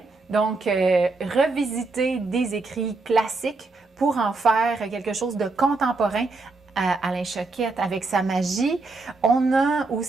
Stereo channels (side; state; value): left; quieter; 3.6 dB